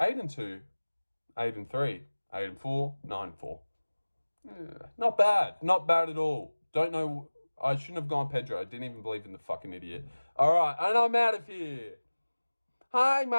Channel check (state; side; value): inverted; both; correlation -1.00